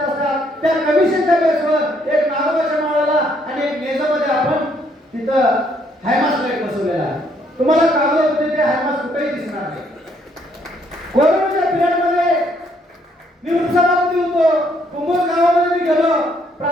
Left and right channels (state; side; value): normal; both; correlation 0.69